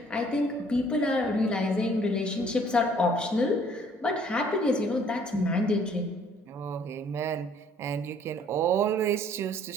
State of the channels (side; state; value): both; normal; correlation 0.59